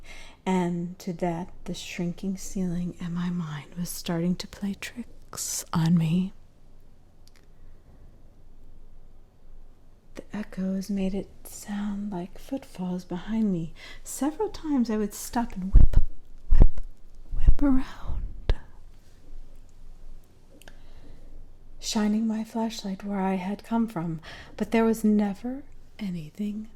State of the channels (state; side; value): identical; both; correlation 1.00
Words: and to that the shrinking ceiling and my mind was starting to play tricks on me. The echoes made it sound like footfalls behind me. Several times I would stop and whip around, shining my flashlight where I had come from, but there was never anything